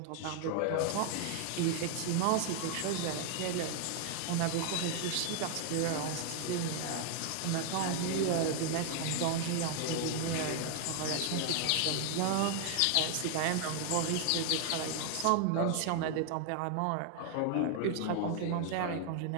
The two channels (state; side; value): different; both; correlation 0.00